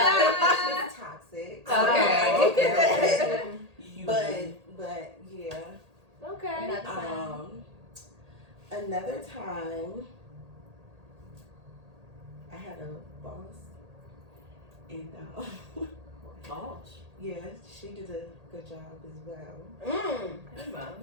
toxic. Okay. But yeah. Okay. Another time, I had a boss, and Boss. yeah, she did a good job as well.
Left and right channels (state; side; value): late; left; 1.8 ms